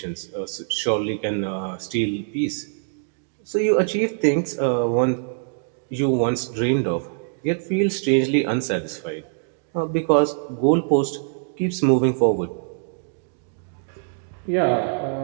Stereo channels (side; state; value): left; silent; digital silence